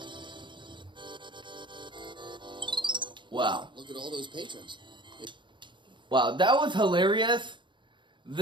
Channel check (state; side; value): late; left; 0.23 ms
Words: Wow. Look at all those patrons. Wow, that was hilarious.